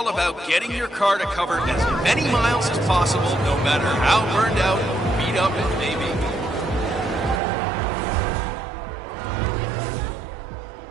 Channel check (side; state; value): left; drops out; at 7.4 s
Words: about getting your car to cover as many miles as possible, no matter how burned out or beat up it may be.